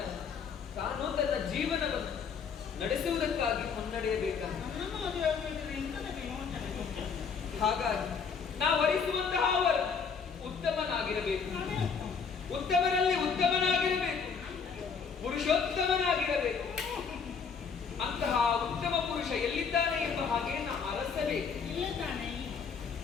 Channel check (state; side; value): quieter; right; 6.0 dB